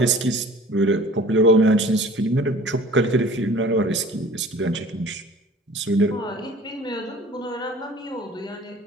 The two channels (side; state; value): both; normal; correlation 0.47